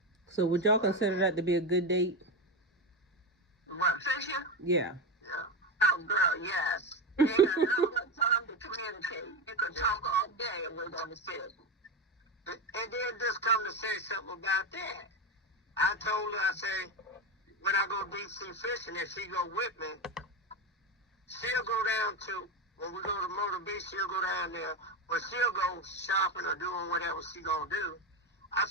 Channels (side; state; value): both; normal; correlation 0.15